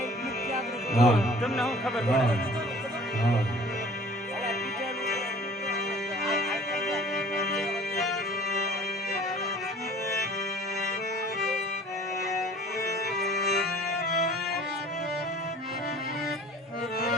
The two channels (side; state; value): both; normal; correlation 0.49